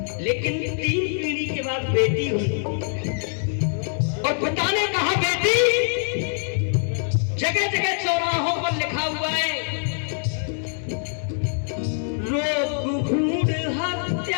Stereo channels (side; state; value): right; silent; 63 dB below the other